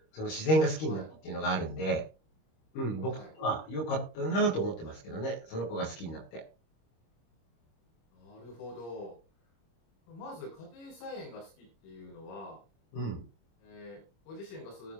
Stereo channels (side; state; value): right; late; 26 ms